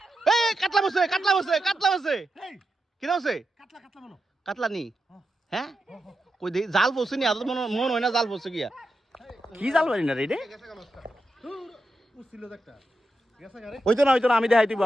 কাটলা বসে কি বসে কাটলা নি হ্যাঁ কই দে জাল বসে নি আদর মন হয় না জাল বসে গিয়া কি জাল বানি না রে ওই তো না আমি দেখাই দিব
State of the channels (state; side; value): normal; both; correlation 0.88